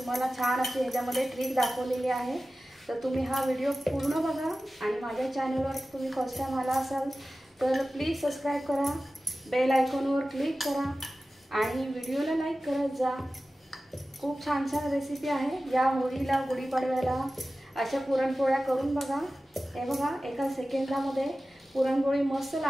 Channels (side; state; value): both; normal; correlation 0.95